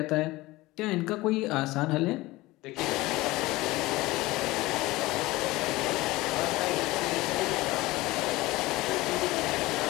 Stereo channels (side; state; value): right; quieter; 19.7 dB